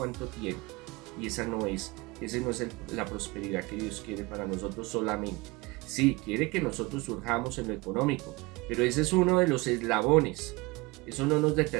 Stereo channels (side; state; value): left; quieter; 24.1 dB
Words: tiene. Y esa no es la prosperidad que Dios quiere para nosotros solamente, Sí, quiere que nosotros surjamos en lo económico, pero ese es uno de los eslabones. Eso no nos